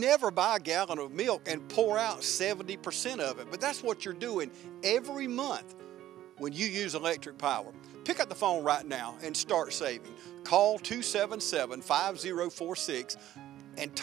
buy a gallon of milk and pour out 70% of it, but that's what you're doing every month when you use electric power. Pick up the phone right now and start saving. Call 277-5046 and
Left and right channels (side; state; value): left; quieter; 13.3 dB